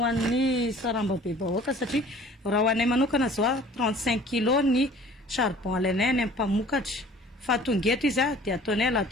an'ny sarambabem-bahoaka satria raha ho anay manokana zao 35 kg ny charbon alainay any amin'ny mpamokatra. Fa tonga eto izy dia ataonay à la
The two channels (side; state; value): both; normal; correlation 0.49